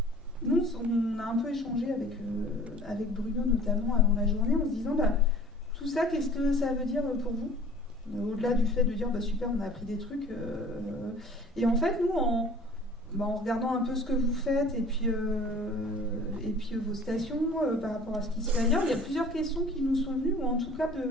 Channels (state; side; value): normal; both; correlation 0.48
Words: Nous, on a un peu échangé avec Bruno, notamment, avant la journée, en se disant, tout ça, qu'est-ce que ça veut dire pour vous ? Au-delà du fait de dire, super, on a appris des trucs. Et en fait, nous, en regardant un peu ce que vous faites et puis vos stations par rapport à ce qui se fait ailleurs, il y a plusieurs questions qui nous sont venues, ou en tout cas